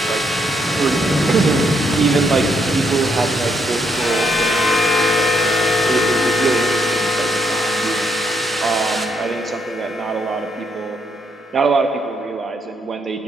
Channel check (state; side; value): normal; both; correlation 0.75